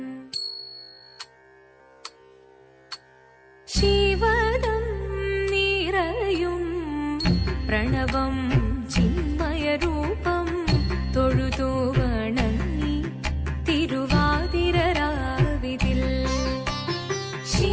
शिवदं निरयुं प्रणवं चिन्मयरूपं തൊഴുതു വണങ്ങി തിരുവാതിരരാവിതിൽ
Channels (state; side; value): identical; both; correlation 1.00